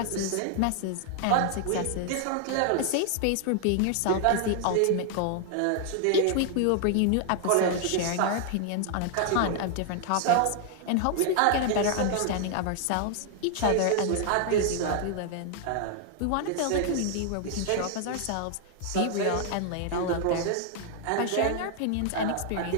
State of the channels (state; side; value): different; both; correlation 0.00